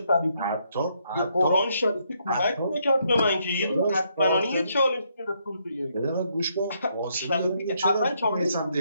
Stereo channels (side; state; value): both; inverted; correlation -0.74